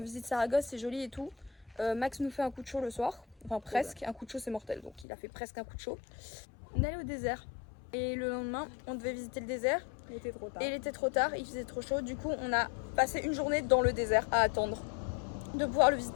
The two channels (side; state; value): right; drops out; at 5.1 s